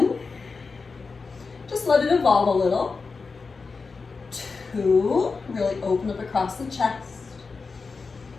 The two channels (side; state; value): right; quieter; 4.5 dB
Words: just let it evolve a little. 2, really open up across the chest.